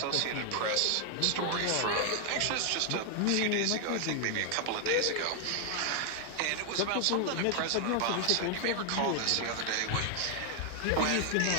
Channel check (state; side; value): different; both; correlation 0.00